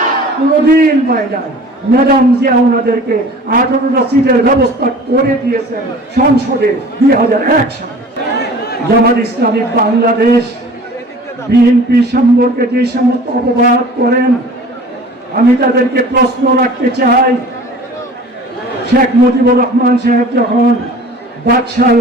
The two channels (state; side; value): normal; both; correlation 0.44